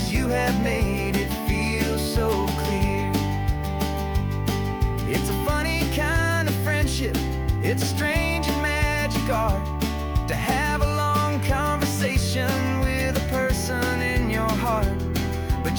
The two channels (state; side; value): identical; both; correlation 1.00